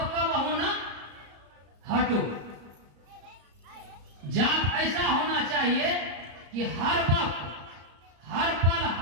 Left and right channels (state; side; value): late; left; 34 ms